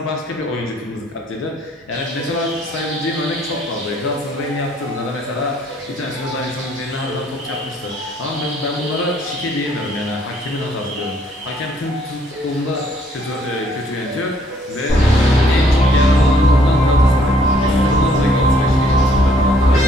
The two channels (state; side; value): normal; both; correlation 0.64